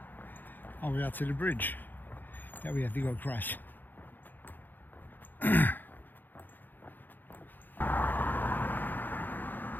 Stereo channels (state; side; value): late; right; 0.088 ms